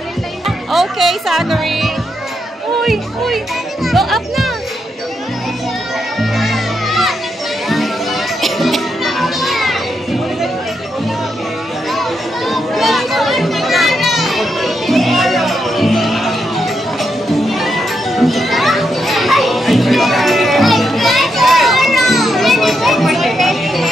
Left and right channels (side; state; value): both; normal; correlation 0.82